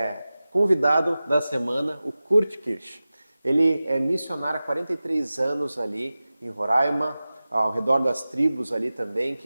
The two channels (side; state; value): both; inverted; correlation -0.96